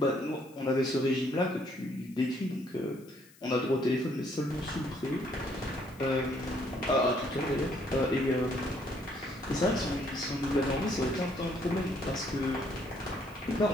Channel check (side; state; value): left; noise; hiss, 26 dB below the sound